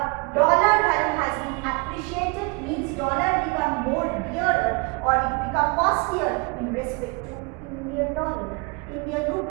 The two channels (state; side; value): quieter; left; 28.8 dB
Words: last year in respect to Indian dollar, Indian